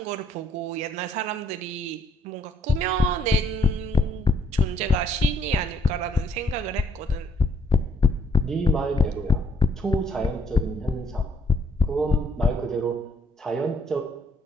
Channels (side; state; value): both; normal; correlation 0.69